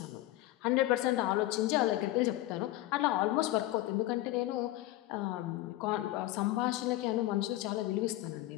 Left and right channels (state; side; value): quieter; right; 16.3 dB